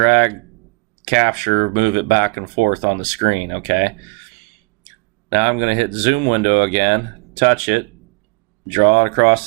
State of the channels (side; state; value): left; quieter; 27.6 dB